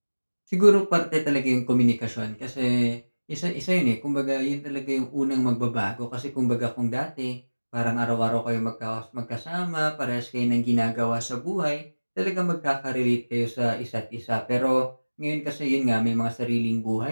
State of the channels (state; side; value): inverted; both; correlation -1.00